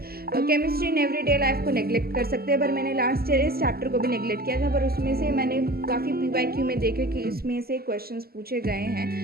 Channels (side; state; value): left; late; 0.45 ms